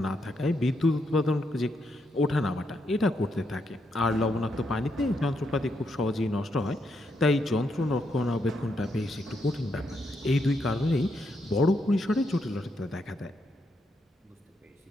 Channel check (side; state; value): both; normal; correlation 0.79